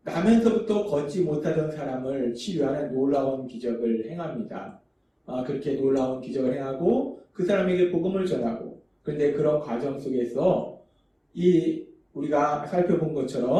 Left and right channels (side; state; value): both; identical; correlation 1.00